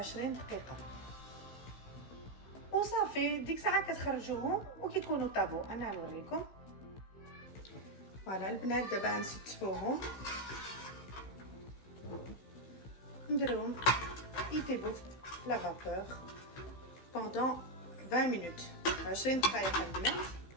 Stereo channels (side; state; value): right; late; 16 ms